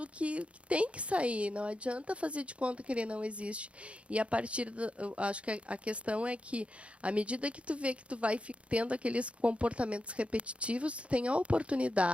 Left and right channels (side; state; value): left; late; 0.061 ms